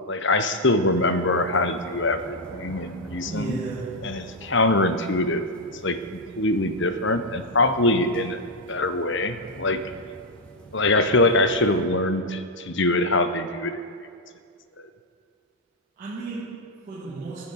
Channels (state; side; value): normal; both; correlation -0.01